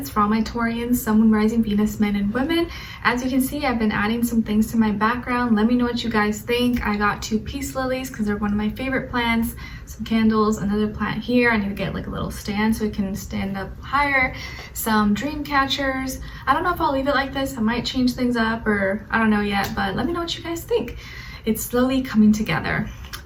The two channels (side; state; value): both; identical; correlation 1.00